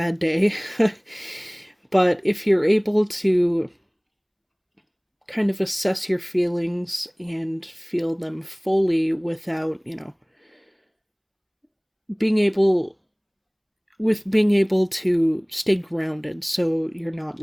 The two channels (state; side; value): identical; both; correlation 1.00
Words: day. But if you're able to kind of assess your feelings and feel them fully without, being able being able to stay grounded, so you're not